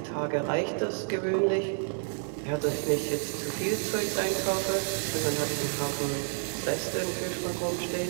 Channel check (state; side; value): silent; left; 58 dB below the other